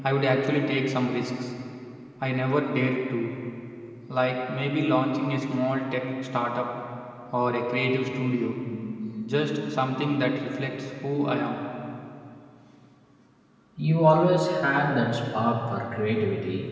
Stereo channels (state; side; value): identical; both; correlation 1.00